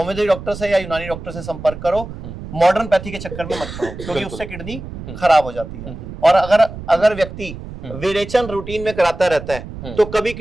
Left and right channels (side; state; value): right; noise; rumble, 11 dB below the sound